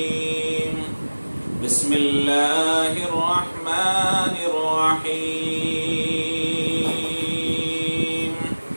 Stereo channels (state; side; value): inverted; both; correlation -1.00